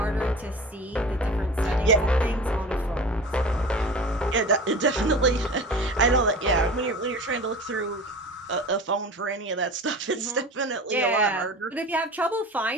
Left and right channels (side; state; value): both; normal; correlation 0.36